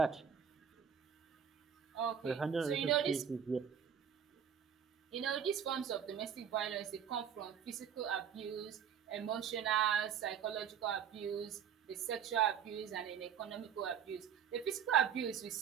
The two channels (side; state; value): left; quieter; 8.0 dB